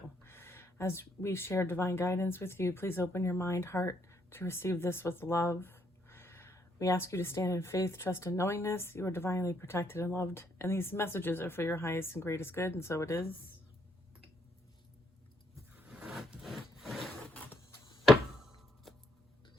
As we share divine guidance with you, please open your mind, heart to receive this with love. We ask you to stand in faith, trust, and knowingness. You are divinely protected and loved, and these messages are for your highest and greatest good, and so it is. All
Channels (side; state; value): both; normal; correlation 0.72